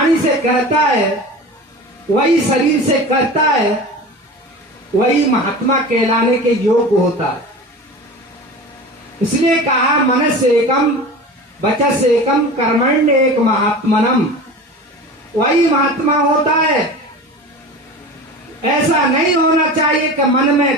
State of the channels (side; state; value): both; normal; correlation 0.34